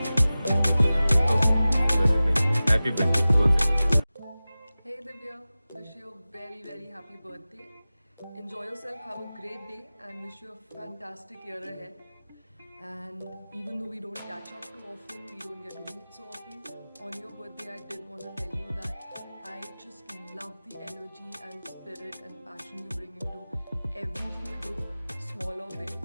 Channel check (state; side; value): inverted; both; correlation -0.97